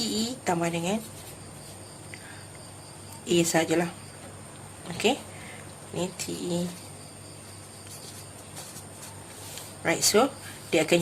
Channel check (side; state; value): both; identical; correlation 1.00